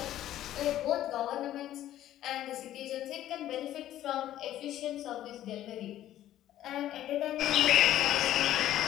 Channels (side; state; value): right; quieter; 12.9 dB